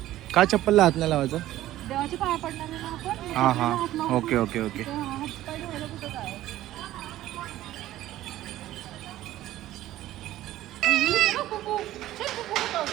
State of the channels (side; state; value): left; quieter; 14.4 dB